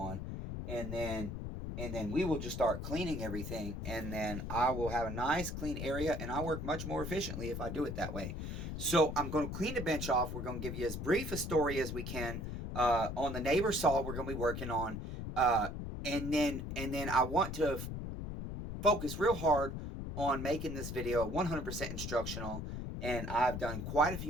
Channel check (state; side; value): noise; left; rumble, 5 dB below the sound